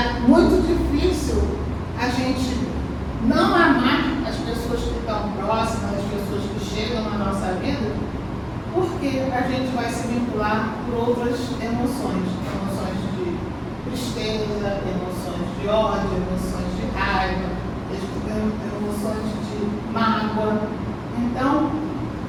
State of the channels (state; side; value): identical; both; correlation 1.00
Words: muito difícil a gente não amar as pessoas que estão próximas, as pessoas que chegam na nossa vida, porque a gente vai se vincular por outras emoções de tristeza, emoções de ódio, emoções de raiva, emoções de mágoa. Então,